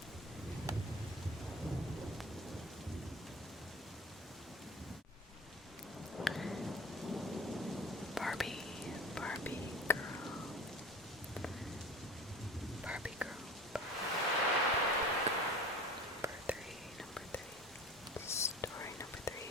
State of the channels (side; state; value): both; normal; correlation 0.37